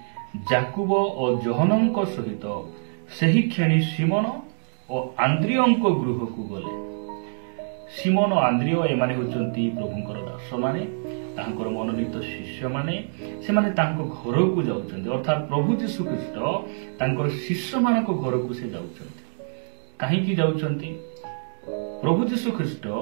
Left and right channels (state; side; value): silent; left; digital silence